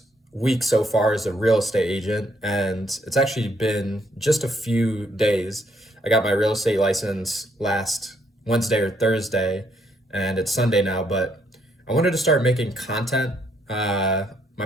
week so far as a real estate agent, and it's actually been just a few days. I got my real estate license last Wednesday or Thursday, and it's Sunday now, but I wanted to start making content. My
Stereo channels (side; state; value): both; normal; correlation 0.72